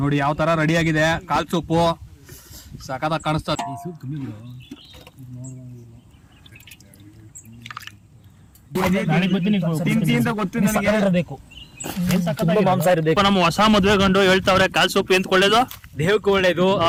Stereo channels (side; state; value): both; identical; correlation 1.00